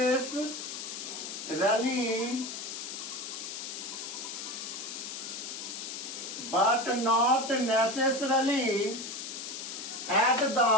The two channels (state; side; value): noise; left; hiss, 7 dB below the sound